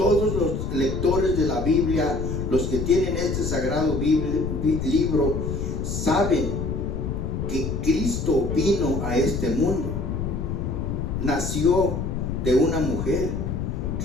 los lectores de la Biblia, los que tienen este sagrado libro, saben que Cristo vino a este mundo. Nació de una mujer,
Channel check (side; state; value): left; noise; rumble, 2 dB below the sound